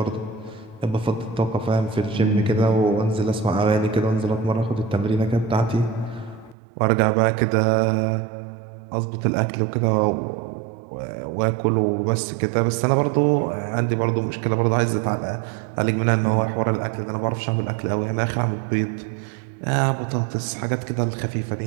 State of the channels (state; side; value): drops out; left; at 6.6 s